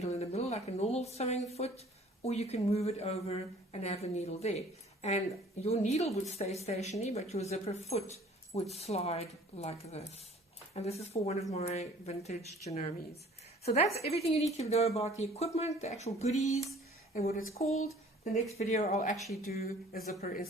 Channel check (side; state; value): both; normal; correlation 0.52